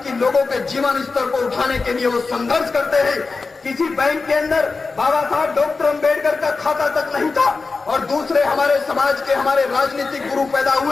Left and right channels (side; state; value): right; quieter; 4.1 dB